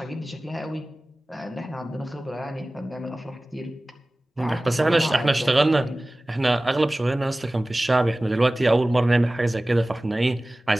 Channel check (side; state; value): both; normal; correlation 0.98